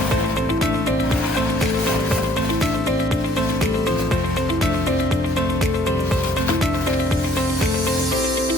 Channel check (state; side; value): normal; both; correlation 0.60